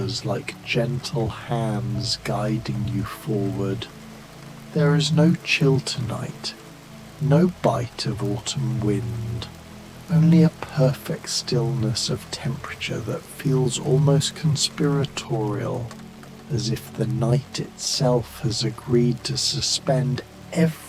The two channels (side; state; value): both; identical; correlation 1.00